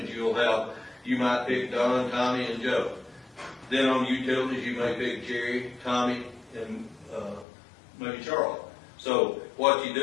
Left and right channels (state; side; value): drops out; right; at 7.5 s